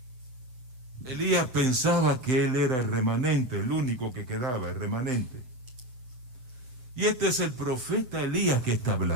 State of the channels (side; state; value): left; late; 7.9 ms